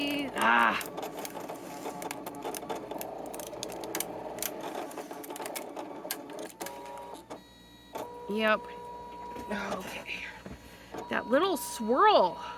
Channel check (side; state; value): both; identical; correlation 1.00